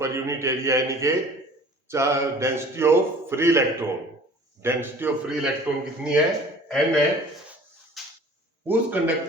unit area यानी कि डेंसिटी ऑफ फ्री इलेक्ट्रॉन कितनी है? N है. उस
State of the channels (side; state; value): both; normal; correlation 0.47